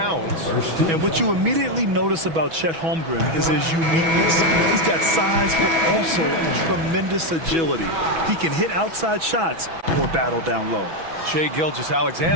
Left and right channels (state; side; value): late; left; 6.1 ms